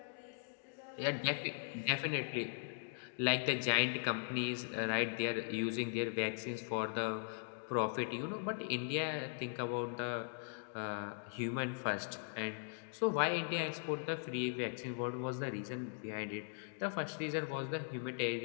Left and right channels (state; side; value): silent; right; digital silence